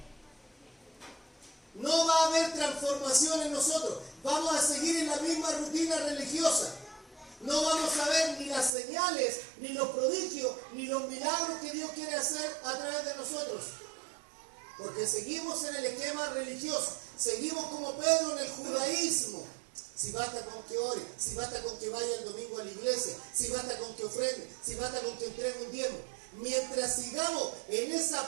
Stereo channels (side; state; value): left; drops out; at 8.7 s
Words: No va a haber transformación en nosotros. Vamos a seguir en la misma rutina religiosa. No vamos a ver ni las señales, ni los prodigios, ni los milagros que Dios quiere hacer a través de nosotros. Porque seguimos en el esquema religioso. Seguimos como Pedro en el judaísmo. Si basta con que ore, si basta con que vaya el domingo a la iglesia, si basta con que ofrende, si basta con que entregue un diezmo. Mientras sigamos en